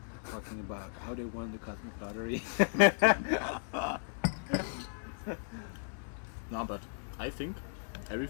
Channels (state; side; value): silent; right; digital silence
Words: Talking about how they won the cosmic lottery. No, but I think